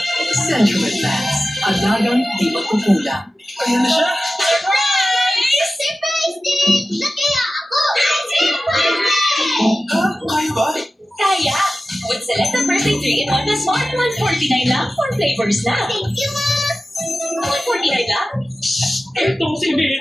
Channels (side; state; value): both; normal; correlation 0.95